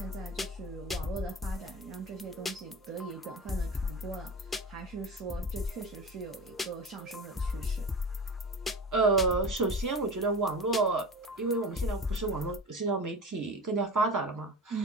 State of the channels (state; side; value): normal; both; correlation 0.31